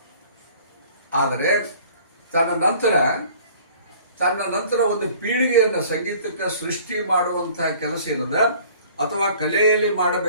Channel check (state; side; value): inverted; both; correlation -0.51